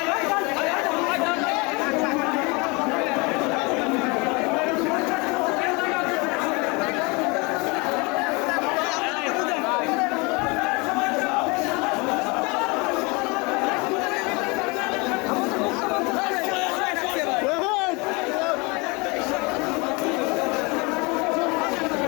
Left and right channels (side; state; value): right; quieter; 27.9 dB